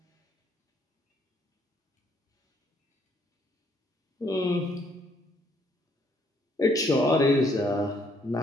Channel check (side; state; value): both; normal; correlation 0.68